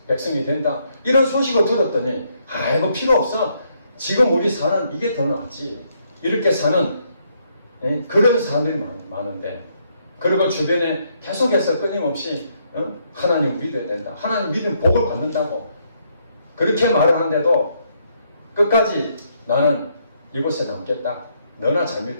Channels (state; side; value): inverted; both; correlation -0.73